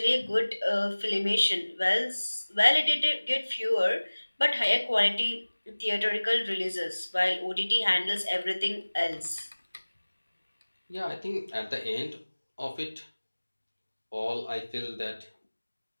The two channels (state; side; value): inverted; both; correlation -1.00